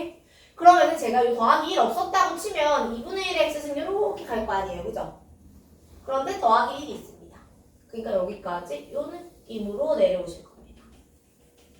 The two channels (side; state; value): both; identical; correlation 1.00